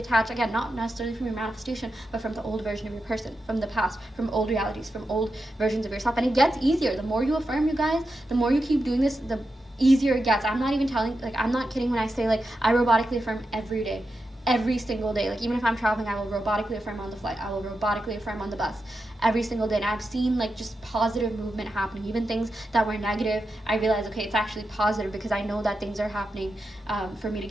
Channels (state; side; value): normal; both; correlation 0.89